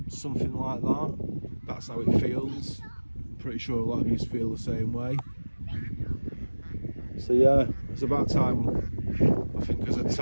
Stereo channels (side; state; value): both; inverted; correlation -1.00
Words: something like that. That's how it feels. I'm pretty sure a lot of you feel the same way. So yeah, it's about time, I think, as a